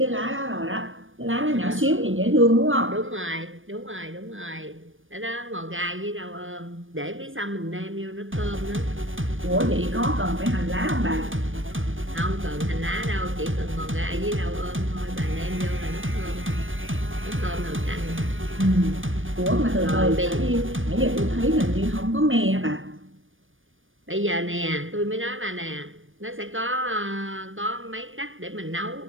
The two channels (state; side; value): late; left; 0.58 ms